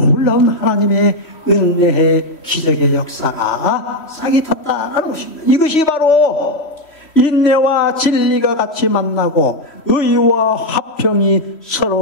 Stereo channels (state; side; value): late; right; 3.1 ms